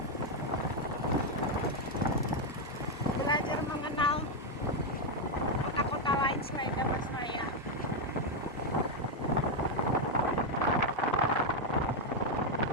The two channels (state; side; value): normal; both; correlation 0.02